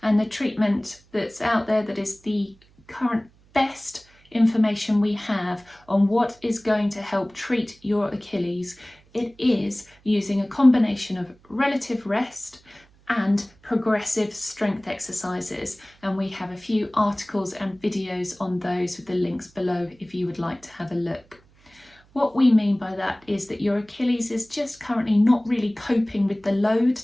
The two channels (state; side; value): noise; right; hum, 30 dB below the sound